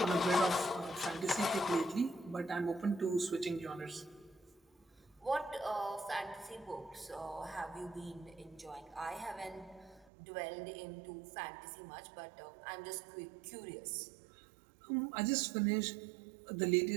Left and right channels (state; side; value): drops out; left; at 10.1 s